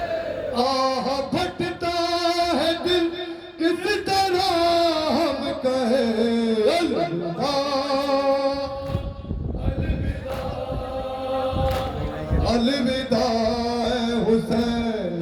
आह फटता है दिल किस तरह हम कहे अलविदा, अलविदा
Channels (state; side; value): identical; both; correlation 1.00